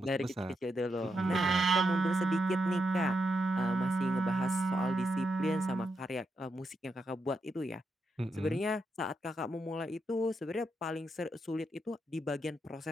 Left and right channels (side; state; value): both; normal; correlation 0.83